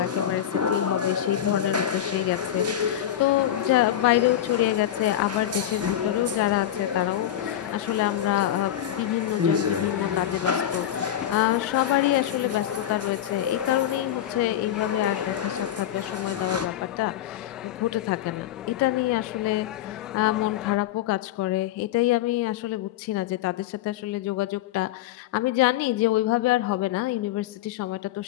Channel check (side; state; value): right; quieter; 11.6 dB